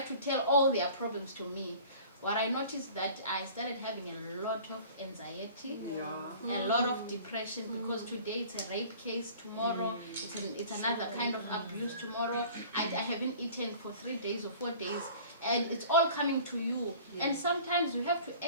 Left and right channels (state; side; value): inverted; both; correlation -0.46